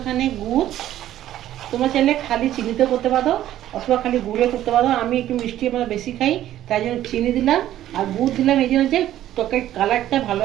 গুড়। তোমরা চাইলে খালি চিনিতে করতে পারো অথবা খালি গুড়ে করতে পারো। আমি একটু মিষ্টি আমরা বেশি খাই, তাই জন্য চিনি দিলাম। আর গুড় দিলাম এই জন্য যে তরকারির কালারটা ভালো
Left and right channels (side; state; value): left; quieter; 12.8 dB